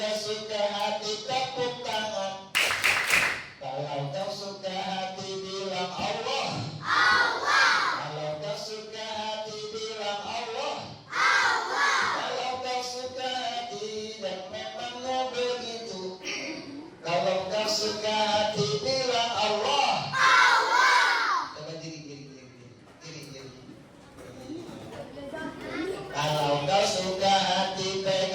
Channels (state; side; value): identical; both; correlation 1.00